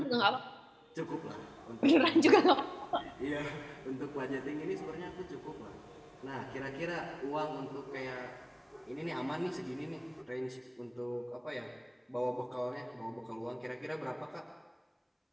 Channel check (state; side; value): identical; both; correlation 1.00